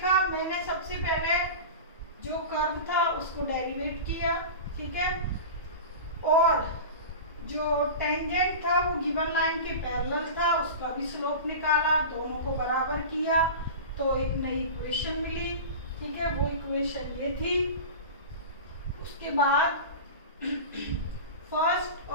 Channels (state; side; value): inverted; both; correlation -0.30